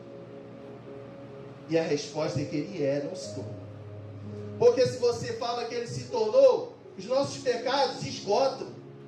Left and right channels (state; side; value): identical; both; correlation 1.00